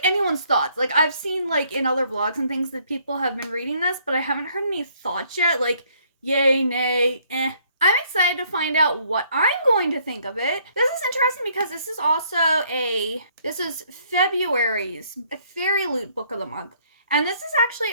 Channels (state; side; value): inverted; both; correlation -0.65